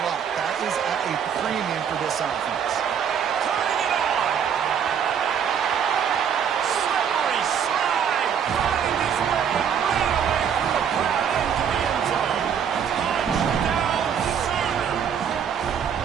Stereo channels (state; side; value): quieter; left; 7.9 dB